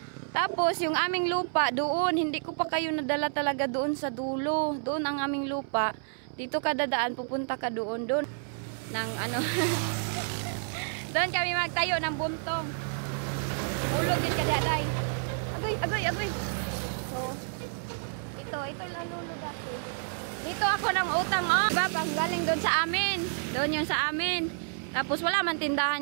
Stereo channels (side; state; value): left; silent; 58 dB below the other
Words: Tapos yung aming lupa doon. Hindi ko pa kayo nadala talaga doon sa dulo. Doon ang aming lupa. Dito ka dadaan. Pupunta ka doon. Doon. Ng ano. Doon kami magtayo ng buntong. Ulog yun ka daday. Agoy. So, ito lalulo dati. Dito ako ng utang, oh. Diba, pang galing doon sa amin. Doon yun sa amin. Tapos wala man